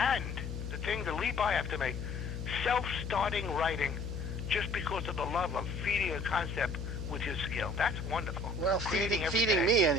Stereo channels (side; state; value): left; noise; hum, 5 dB below the sound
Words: the thing, the leap I have to make, self-starting writing, just because of the love of feeding a concept with your skill. That's wonderful. Well, feeding me